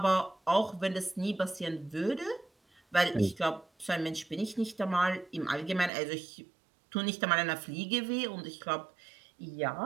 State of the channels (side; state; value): left; drops out; at 5.9 s